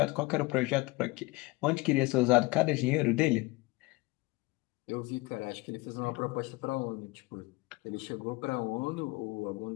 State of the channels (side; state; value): right; quieter; 22.8 dB